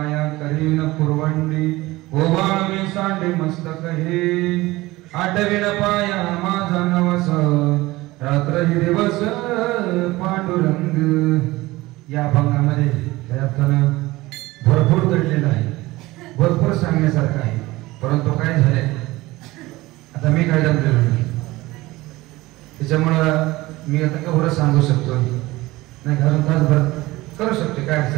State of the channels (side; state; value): left; quieter; 19.4 dB